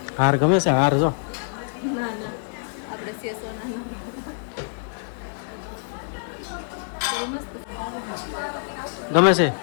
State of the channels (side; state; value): right; silent; 62 dB below the other